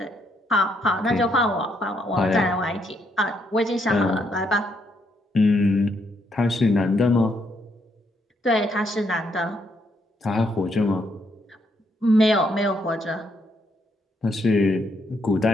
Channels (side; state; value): both; normal; correlation 0.75